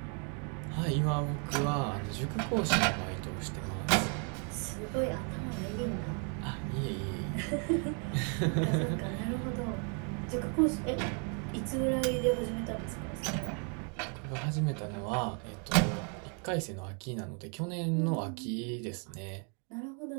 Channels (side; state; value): left; quieter; 39.6 dB